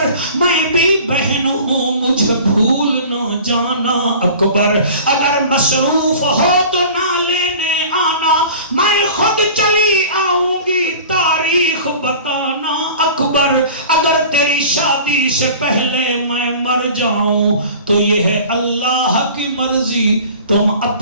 میں بھی بہن ہوں مجھے بھول نہ جانا اکبر اگر مصروف ہو تو نہ لینے آنا میں خود چلی آؤں گی تاریخ بتانا اکبر اگر تیری شادی سے پہلے میں مر جاؤں تو یہ ہے اللہ کی مرضی تم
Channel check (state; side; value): inverted; both; correlation -0.42